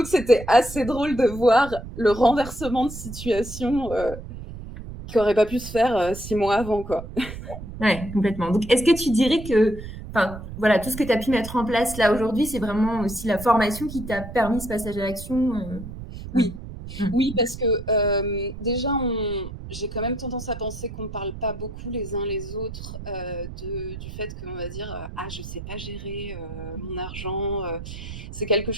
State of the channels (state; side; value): noise; right; rumble, 11 dB below the sound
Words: c'était assez drôle de voir le renversement de situation qui n'aurait pas pu se faire 6 mois avant, quoi. Ouais, complètement. Donc, est-ce que tu dirais que, tout ce que tu as pu mettre en place là aujourd'hui, c'est vraiment aussi la formation qui t'a permis ce passage à l'action? Oui. Oui, parce que déjà, j'ai quand même tendance à penser qu'on ne parle pas beaucoup les uns les autres du fait qu'on va dire « Ah, je ne sais pas gérer mon argent ». C'est quelque